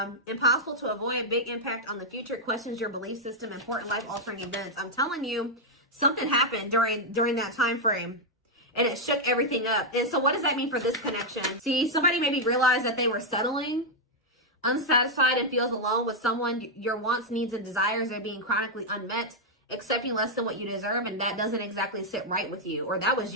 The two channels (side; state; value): both; normal; correlation -0.01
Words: impossible to avoid, big impact on the future, questions your belief system, important life-altering events. I'm telling you, something happened during that time frame, and it shook everything up. And so what does that mean for this connection? See, somebody maybe realized that they were settling, unsatisfied, and feels alone with someone. Your wants, needs, and desires are being chronically unmet, accepting less than what you deserve, and that doesn't exactly sit right with you. Or that was